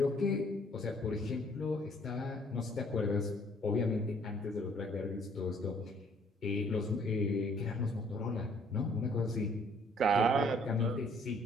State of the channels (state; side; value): normal; both; correlation 0.61